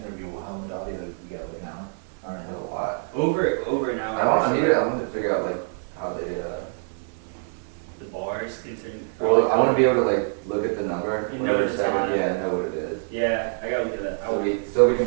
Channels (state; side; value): silent; left; 62 dB below the other